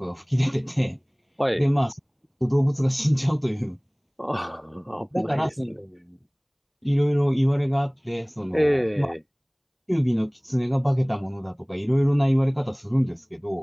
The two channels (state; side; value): identical; both; correlation 1.00